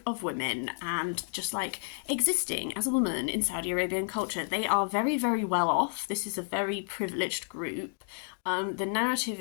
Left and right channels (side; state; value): right; silent; 57 dB below the other